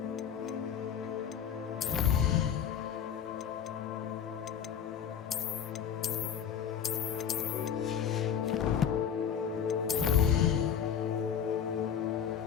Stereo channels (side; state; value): right; quieter; 8.2 dB